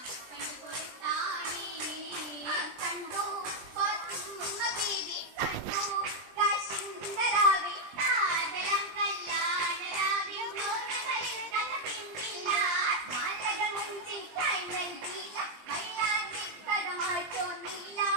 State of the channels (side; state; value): left; late; 20 ms